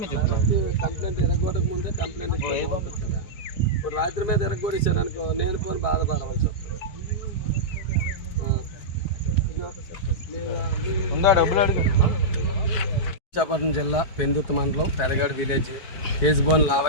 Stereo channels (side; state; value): right; late; 4.7 ms